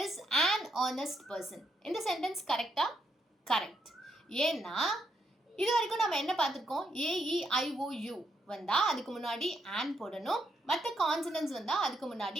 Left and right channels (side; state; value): both; normal; correlation 0.78